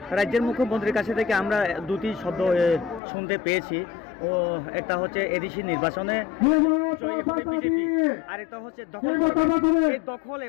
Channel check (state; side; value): drops out; right; at 3.0 s